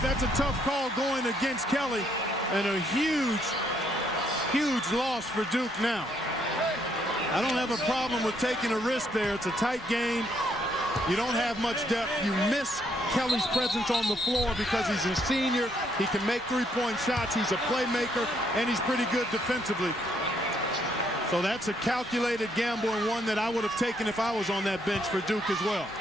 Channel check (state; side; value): normal; both; correlation 0.71